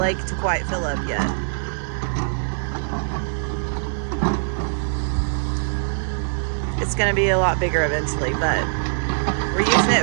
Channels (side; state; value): left; silent; 56 dB below the other